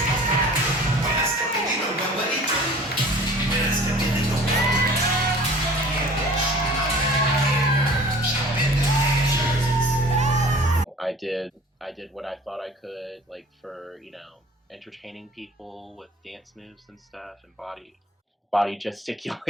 I did what I thought I could, like for, you know, entertaining people with dance moves and stuff and body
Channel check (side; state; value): both; normal; correlation 0.46